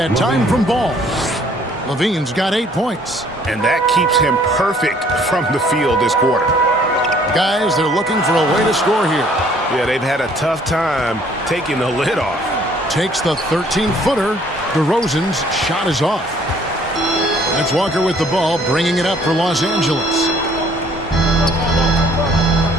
time from Ball. Levine's got 8 points. And that keeps him perfect from the field this quarter. Guys, they're looking for a way to score here. Yeah, they've had a tough time taking the lid off. Takes the 13-footer. DeRozan's shot is off. That's Walker with the ball, bringing it up for Los Angeles.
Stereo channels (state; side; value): normal; both; correlation 0.60